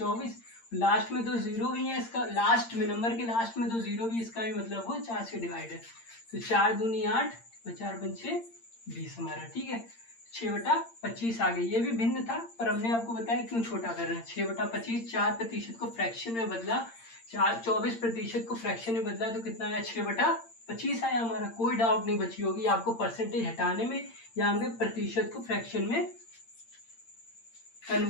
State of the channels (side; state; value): right; late; 8.8 ms